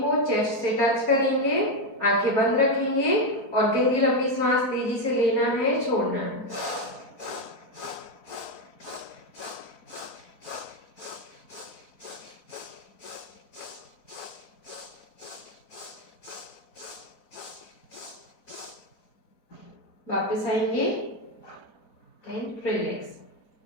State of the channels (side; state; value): right; late; 4.4 ms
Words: चेस्ट से टच करेंगे, आंखें बंद रखेंगे और गहरी लंबी श्वास तेजी से लेना है, छोड़ना है। वापस आएंगे एंड रिलैक्स।